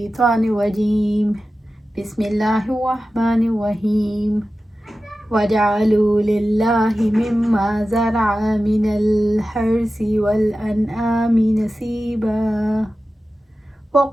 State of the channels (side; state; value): both; normal; correlation 0.94